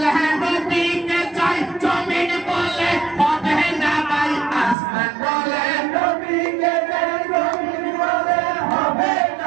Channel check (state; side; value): drops out; left; at 4.8 s